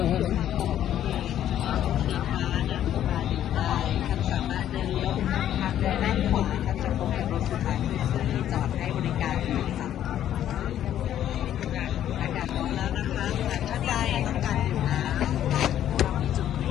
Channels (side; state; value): right; quieter; 11.1 dB